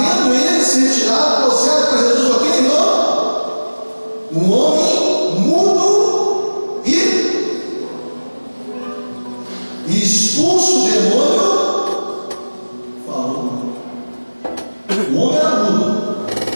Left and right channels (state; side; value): inverted; both; correlation -1.00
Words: ele se retirado ao céu para Jesus, ok, irmão? Um homem mudo e expulso o demônio falou. O homem era mudo.